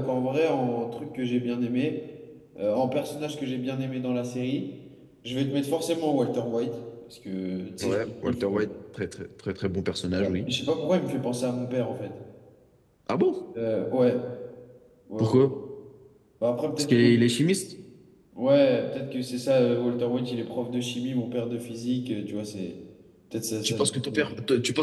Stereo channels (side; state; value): both; identical; correlation 1.00